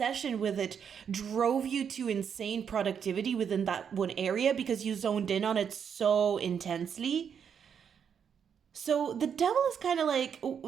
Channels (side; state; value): left; quieter; 7.5 dB